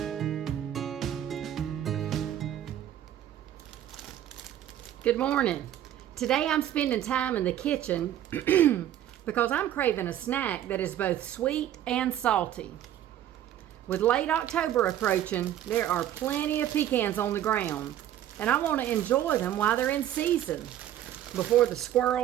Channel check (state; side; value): quieter; left; 11.7 dB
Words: Good morning. Today I'm spending time in the kitchen because I'm craving a snack that is both sweet and salty. With late October approaching, there are plenty of pecans on the ground, and I want to enjoy them while they're in season before the